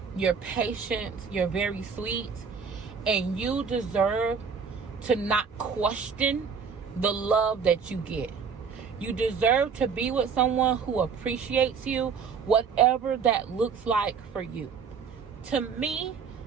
you're patient, you're very sweet, and you deserve to not question the love that you get. You deserve to be with someone who appreciates you, whatever that looks like for you. To me,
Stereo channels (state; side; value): quieter; left; 6.0 dB